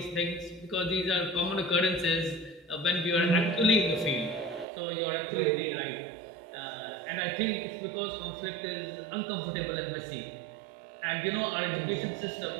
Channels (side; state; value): left; drops out; at 4.7 s